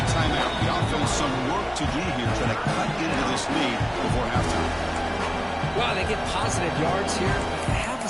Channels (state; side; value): identical; both; correlation 1.00